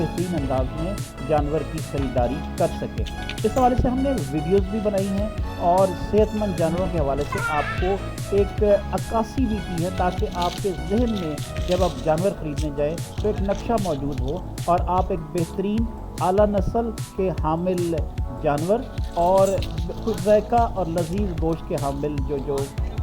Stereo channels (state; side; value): identical; both; correlation 1.00